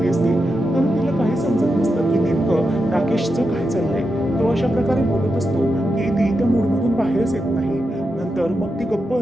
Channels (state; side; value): normal; both; correlation 0.87